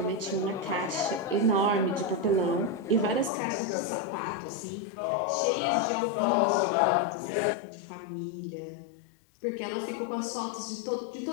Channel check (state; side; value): drops out; right; at 3.3 s